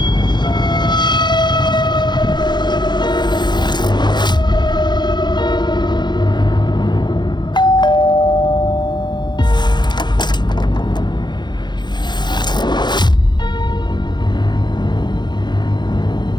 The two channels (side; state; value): right; late; 0.21 ms